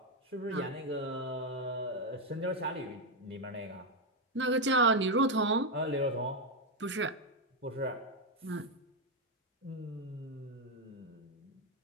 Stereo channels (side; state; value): both; normal; correlation 0.04